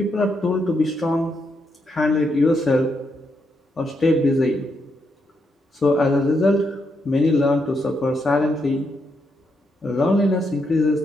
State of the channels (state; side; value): normal; both; correlation 0.80